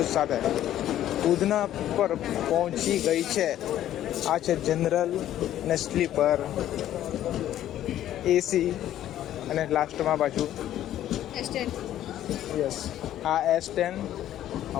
સાથે ઉધના પર પહોંચી ગઈ છે. આ છે જનરલ ને સ્લીપર, એસી અને લાસ્ટમાં પાછું યસ આ S10.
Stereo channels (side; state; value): right; quieter; 12.2 dB